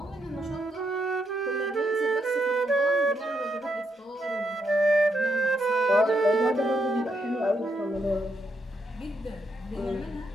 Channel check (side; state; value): both; normal; correlation 0.78